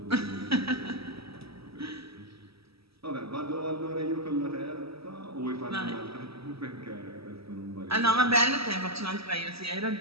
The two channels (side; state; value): left; late; 0.77 ms